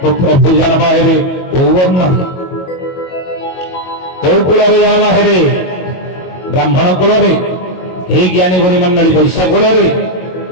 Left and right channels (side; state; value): right; late; 22 ms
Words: तो प्रभु जन्म हेबे ओ वर्ण कौ कूल जन्म हेबे ब्राह्मण कूल हे ज्ञानी गुणी मंडली वैश्य कूल